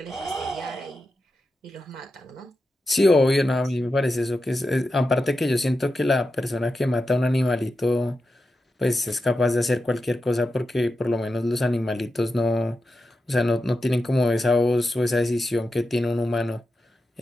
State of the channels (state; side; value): normal; both; correlation 0.90